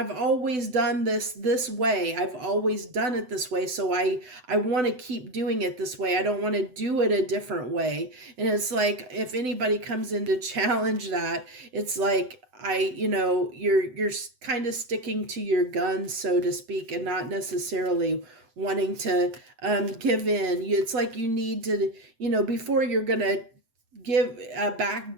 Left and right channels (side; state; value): left; late; 7.9 ms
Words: always done this way. I've always done it this way. So I want to keep doing it this way. I don't want to do it a different way. And it's like, if anybody comes in to challenge that, it's like, you're kind of sticking to your guns, so to speak, and not necessarily wanting to give in. It's like you need to, before you're going to give back